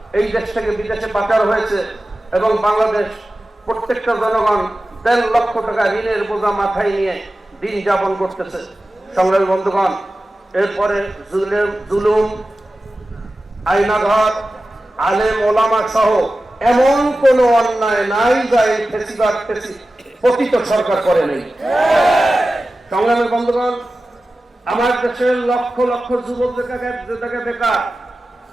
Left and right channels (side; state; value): both; normal; correlation 0.95